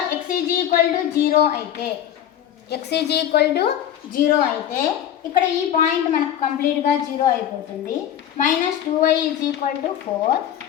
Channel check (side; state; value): right; quieter; 10.5 dB